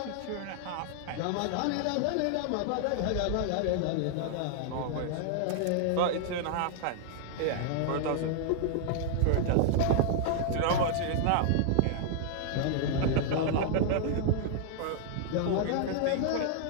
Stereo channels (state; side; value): different; both; correlation 0.00